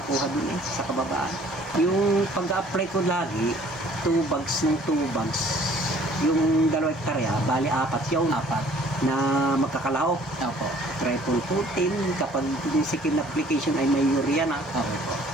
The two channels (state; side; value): normal; both; correlation 0.56